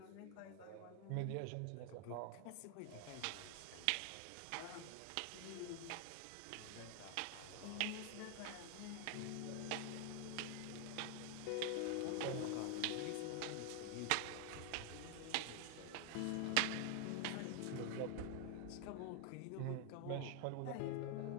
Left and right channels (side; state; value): both; different; correlation 0.00